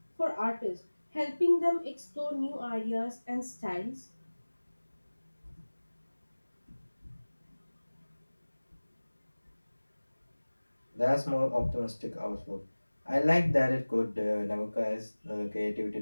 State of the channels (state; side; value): inverted; both; correlation -1.00